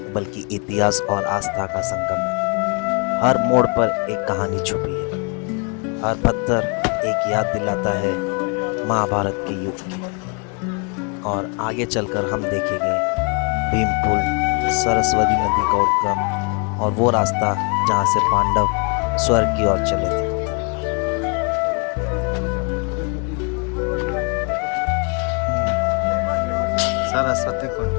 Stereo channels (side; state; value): right; quieter; 34.4 dB